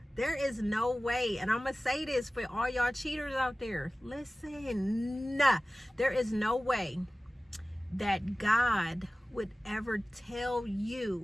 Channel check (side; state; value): both; normal; correlation 0.97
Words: there is no way, and I'm gonna say this for all y'all cheaters out there, listen, there is no way that God would ever tell